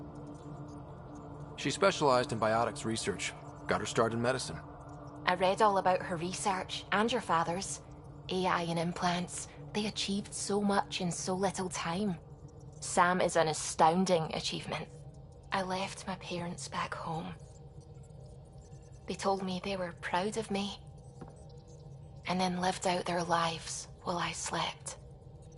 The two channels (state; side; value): identical; both; correlation 1.00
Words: She specialized in biotics research. Got her start in medicine. I read all about her research, and your father's. AI and implants. They achieved so much in so little time. Sam is an astounding achievement. I left my parents back home. They told me they were proud of me, and then lived out their lives while I slept.